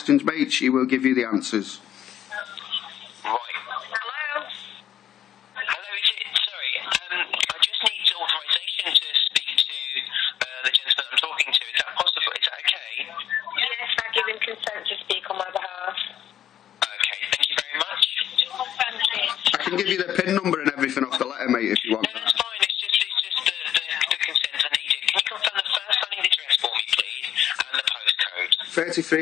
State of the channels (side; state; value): right; quieter; 10.7 dB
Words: mate, she will give you the answers. Right. Hello? Hello, is it? Sorry, I just need authorization to speak to the gentleman I'm talking to. Is that possible? Is that okay? Yes, I give him consent to speak on my behalf. Okay, thank you very much. Thank you. I can give you the PIN number and everything off the letter, mate, if you want. No, that's fine. It's just the consent I needed. Can you confirm the first line of the address for me, please, and the postcode?